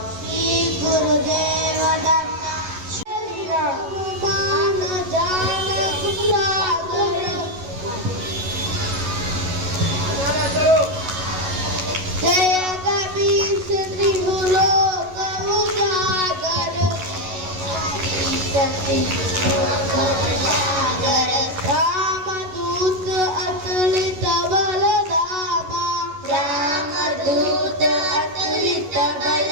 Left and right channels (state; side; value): late; left; 11 ms